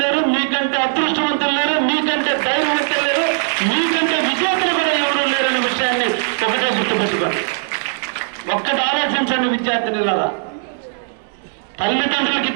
లేరు, మీకంటే అదృష్టవంతులు లేరు, మీకంటే ధైర్యవంతులు లేరు, మీకంటే విజేతలు కూడా ఎవరు లేరు అనే విషయాన్ని ఒకటే గుర్తుపెట్టుకోండి. ఒక్కటి ఆలోచించండి విద్యార్థినిలాగా. తల్లిదండ్రులకు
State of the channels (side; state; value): left; silent; 67 dB below the other